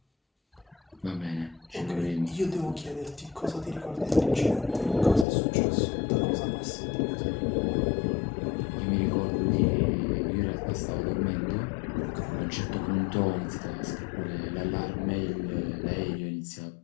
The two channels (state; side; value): drops out; right; at 5.2 s